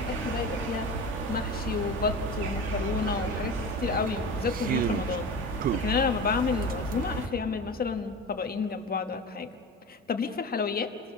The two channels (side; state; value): both; normal; correlation 0.30